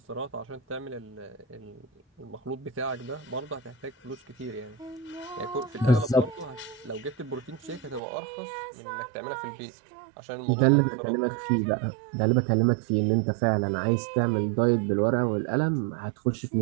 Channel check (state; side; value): drops out; left; at 8.0 s